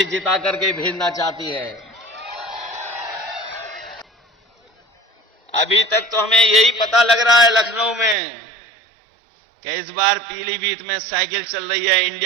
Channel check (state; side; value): drops out; left; at 8.2 s